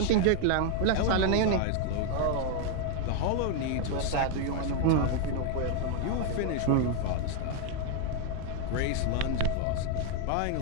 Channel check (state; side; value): different; both; correlation 0.01